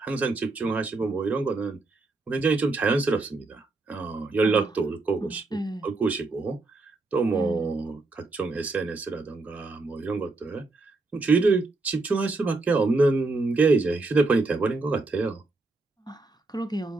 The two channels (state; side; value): quieter; left; 3.4 dB